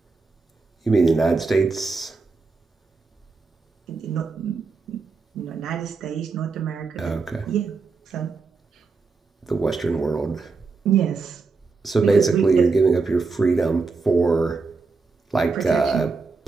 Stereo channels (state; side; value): quieter; left; 4.3 dB